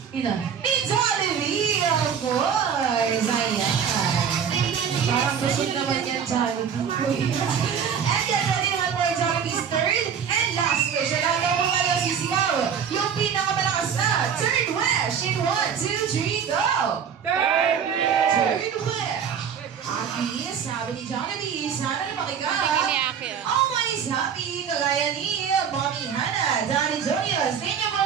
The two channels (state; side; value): quieter; left; 7.6 dB